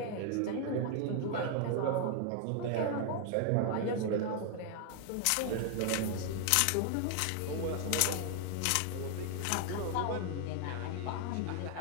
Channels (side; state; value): both; different; correlation 0.00